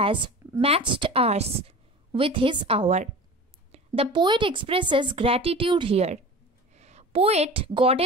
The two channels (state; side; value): normal; both; correlation 0.36